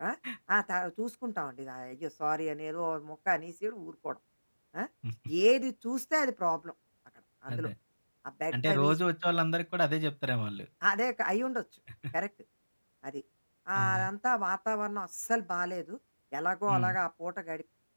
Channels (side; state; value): both; inverted; correlation -1.00